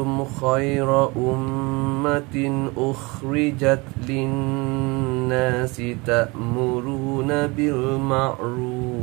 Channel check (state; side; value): quieter; left; 25.9 dB